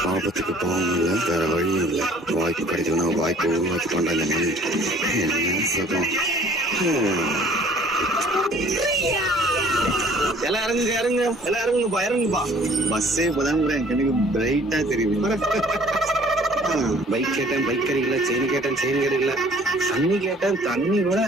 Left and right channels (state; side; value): normal; both; correlation 0.54